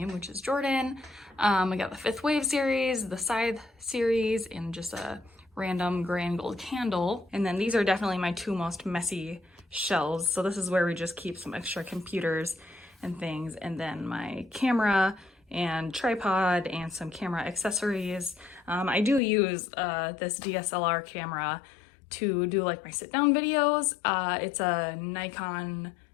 which is Jordan. I got the Fifth Wave series, the Scythe series, and just a random gray and gold candle. And then these are definitely my two most messy shelves. So this is where we just keep some extra computers and things, and then my camera and tripod and some camera accessories. I do use this DSLR camera to do like my sit down videos. It's a Nikon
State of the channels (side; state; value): right; drops out; at 19.2 s